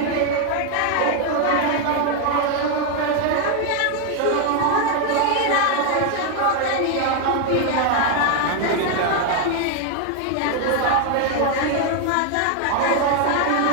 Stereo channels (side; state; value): both; different; correlation 0.01